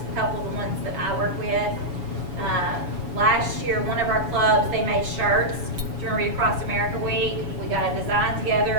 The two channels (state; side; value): late; left; 7.1 ms